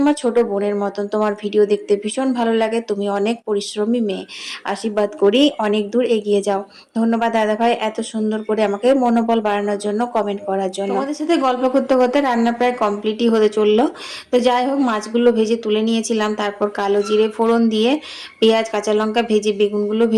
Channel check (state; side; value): identical; both; correlation 1.00